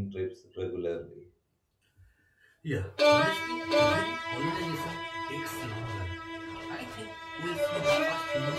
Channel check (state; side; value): identical; both; correlation 1.00